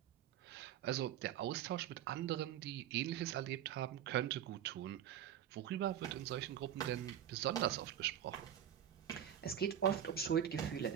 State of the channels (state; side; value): quieter; left; 10.3 dB